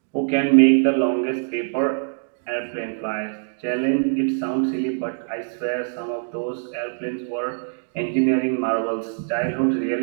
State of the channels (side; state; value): left; silent; digital silence